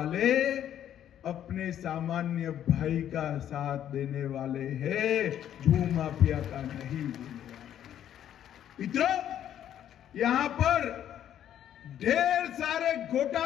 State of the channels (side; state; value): right; quieter; 10.6 dB